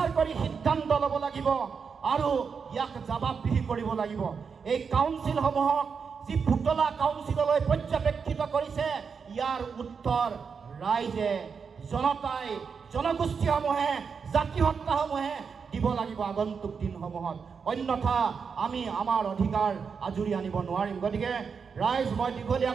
কৰি সিদ্ধান্ত ল'ব লাগিব আৰু ইয়াক জবাবদিহি কৰিব লাগিব। এই কাউন্সিলসমূহক যি পুতলা কাউন্সিললৈ পৰ্যবেক্ষিত কৰিছে, ইয়াৰ উত্তৰ ৰাইজে, জনতাই, জনগোষ্ঠীসমূহে, জাতিসত্তাসমূহে দিব লাগিব আগন্তুক দিনসমূহত। অন্যথা আমি আমাৰ অধিকাৰ আজুৰি আনিব নোৱাৰিম। গতিকে ৰাইজ, মই দীঘলীয়া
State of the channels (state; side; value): quieter; left; 5.9 dB